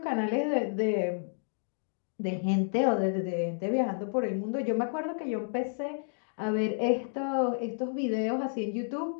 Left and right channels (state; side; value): silent; right; digital silence